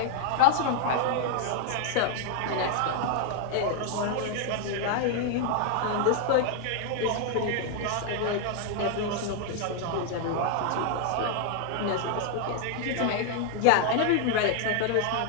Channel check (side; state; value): both; different; correlation 0.00